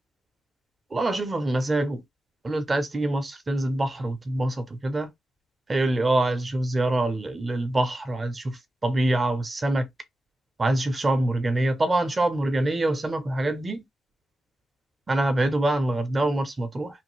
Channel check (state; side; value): normal; both; correlation 0.93